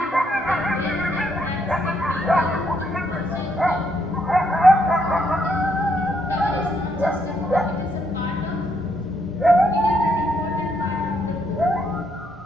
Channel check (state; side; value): normal; both; correlation 0.74